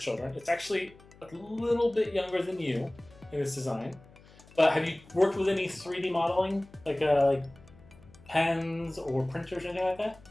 It's actually a little bit younger than you in its design. But have you worked with any 3D modeling, like pens or printers or anything like that?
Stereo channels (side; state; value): left; noise; hum, 24 dB below the sound